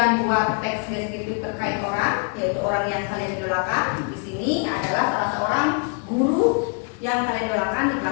buat teks deskriptif terkait orang, yaitu orang yang kalian idolakan. Di sini adalah salah seorang guru yang kalian idolakan di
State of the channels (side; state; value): right; quieter; 38.2 dB